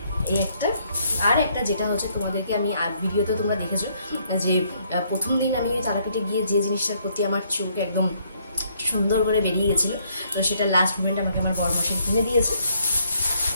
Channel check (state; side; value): inverted; both; correlation -0.69